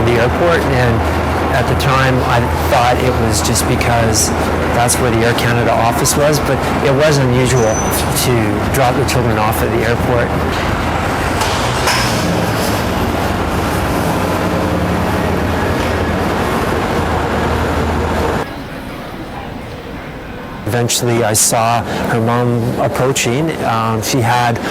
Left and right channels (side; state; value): both; identical; correlation 1.00